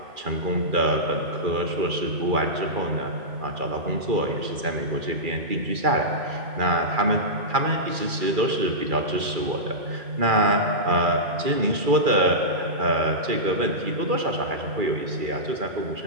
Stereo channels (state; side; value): late; left; 2.4 ms